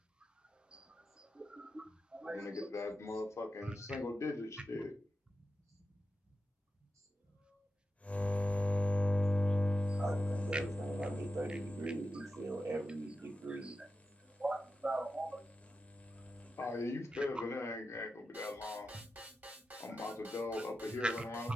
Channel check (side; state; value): both; normal; correlation 0.91